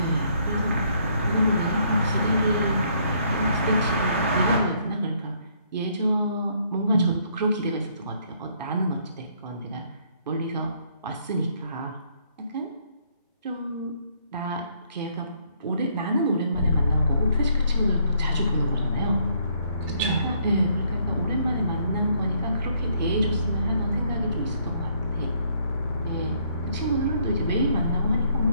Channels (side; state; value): both; inverted; correlation -0.67